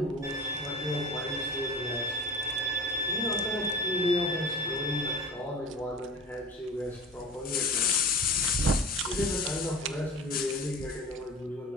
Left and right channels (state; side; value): normal; both; correlation 0.35